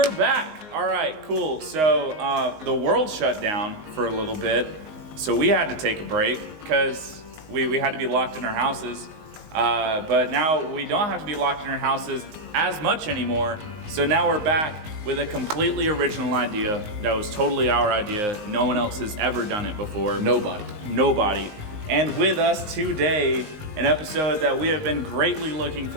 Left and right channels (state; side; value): late; left; 19 ms